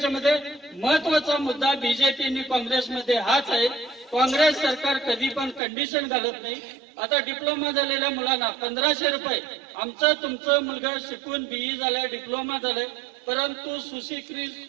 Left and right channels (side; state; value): left; drops out; at 5.6 s